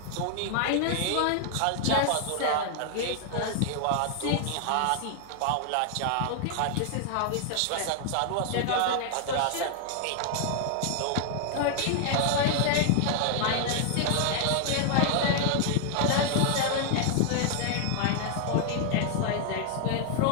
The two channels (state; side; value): different; both; correlation 0.00